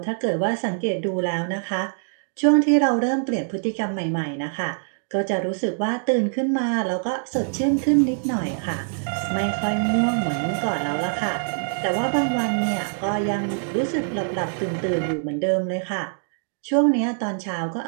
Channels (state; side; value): silent; left; digital silence